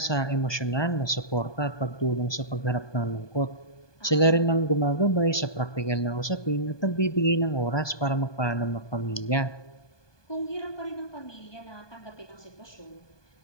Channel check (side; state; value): right; late; 1.2 ms